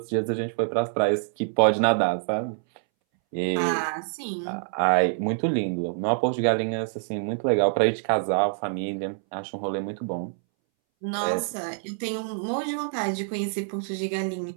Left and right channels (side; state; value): left; silent; 61 dB below the other